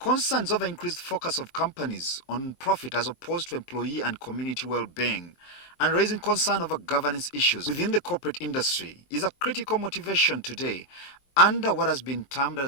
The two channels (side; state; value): right; late; 23 ms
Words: over increased focus of companies on profit as opposed to employee and community well-being, and raising concern over governance issues within the corporate industry is a critical motivation today under what has been termed